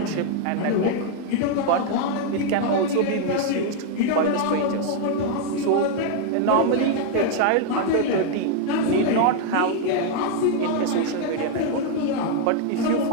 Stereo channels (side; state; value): both; different; correlation 0.00